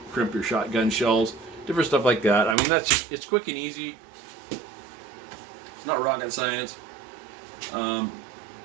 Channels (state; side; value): drops out; left; at 2.6 s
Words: crimp your shotgun shells, different stuff like that. I mean, that's just, it's quick and easy. It's not rocket science.